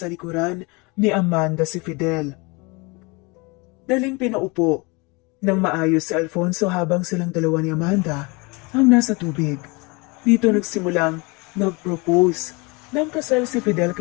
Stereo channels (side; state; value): right; quieter; 27.7 dB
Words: likuran ni Amanda si Fidel. Daling pinaupo ng maayos si Alfonso habang silang dalawa ni Amanda ang nasa tubig. Dito nagsimulang nag-propose ng kasal si Fidel